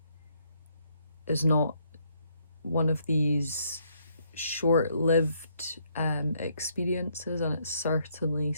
is not one of these short-lived experiences, and it's certainly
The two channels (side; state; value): both; inverted; correlation -0.71